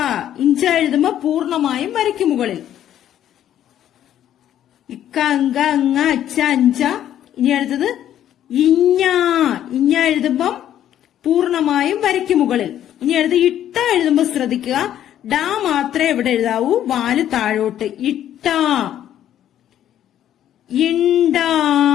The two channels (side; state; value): right; quieter; 11.1 dB